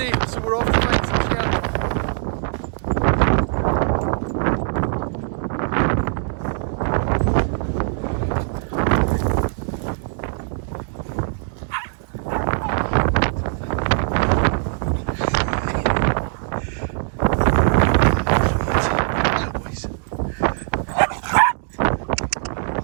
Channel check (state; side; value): silent; left; 65 dB below the other